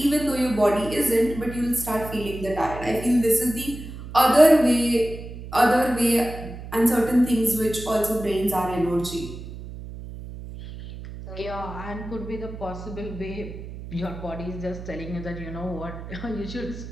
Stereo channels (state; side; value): noise; right; hum, 11 dB below the sound